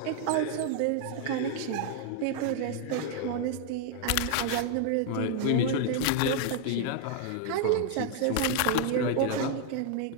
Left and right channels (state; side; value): different; both; correlation 0.00